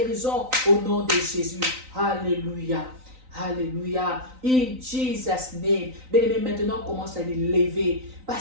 au nom de Jésus. Alléluia. Alléluia. In Jesus' name. Bien-aimé, maintenant commence à les lever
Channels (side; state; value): left; late; 3.9 ms